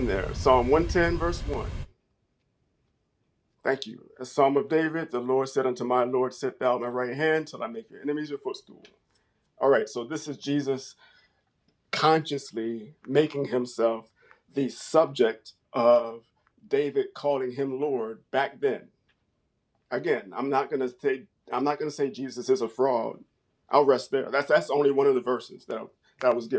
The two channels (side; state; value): both; identical; correlation 1.00